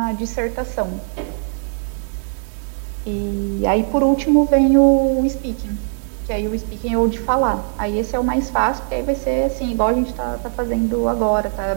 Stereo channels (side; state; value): left; silent; 59 dB below the other